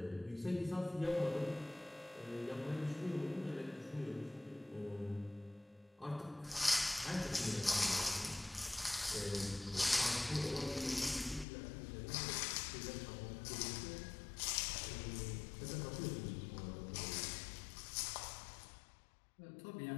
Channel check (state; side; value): drops out; right; at 11.5 s